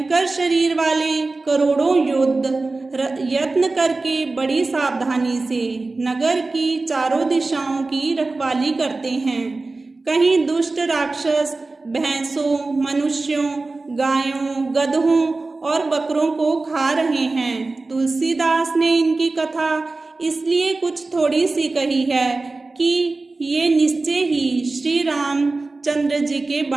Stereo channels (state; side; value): quieter; left; 3.5 dB